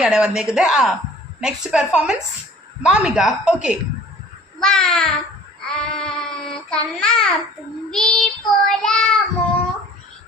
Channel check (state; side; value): normal; both; correlation 0.49